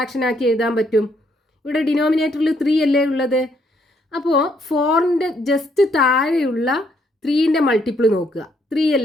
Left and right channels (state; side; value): normal; both; correlation 0.71